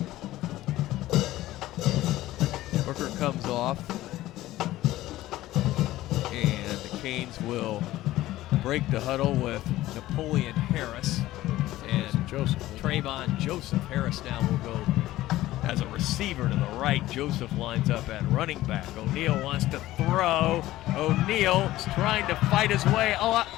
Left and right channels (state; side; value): quieter; right; 15.9 dB